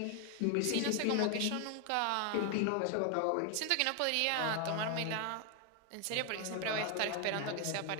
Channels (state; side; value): different; both; correlation 0.00